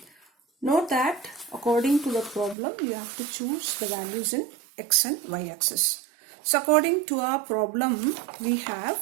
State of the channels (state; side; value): drops out; left; at 2.6 s